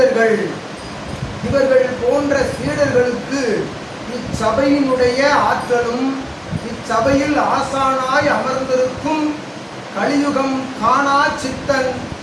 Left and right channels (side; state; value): both; identical; correlation 1.00